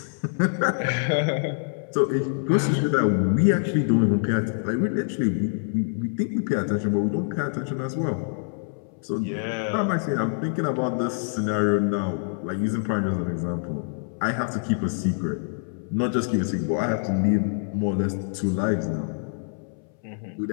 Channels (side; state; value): right; silent; 61 dB below the other